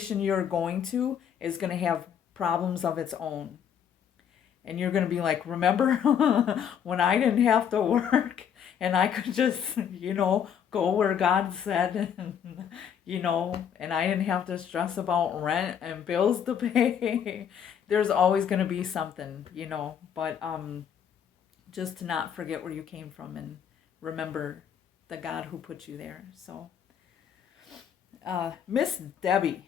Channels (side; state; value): right; quieter; 8.3 dB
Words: you're going to is going to have problems of its own. And you're going to be like, remember when I didn't have to work and I could just, go where God said, and I didn't have to stress about rent and bills to pay. There's always going to be something, but just to not forget where you came from and remember the God who put you there. So, Miss Debbie.